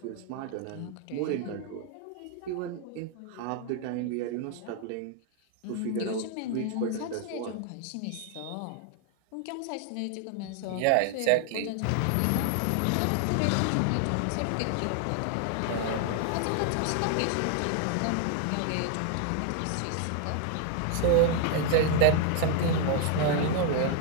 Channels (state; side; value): different; both; correlation 0.00